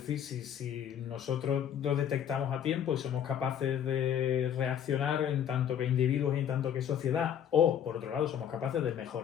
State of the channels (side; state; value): right; quieter; 9.2 dB